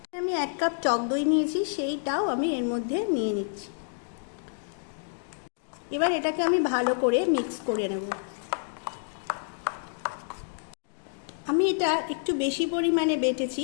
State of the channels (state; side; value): silent; right; digital silence